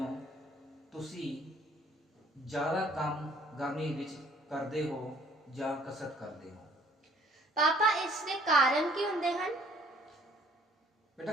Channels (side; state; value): both; normal; correlation 0.59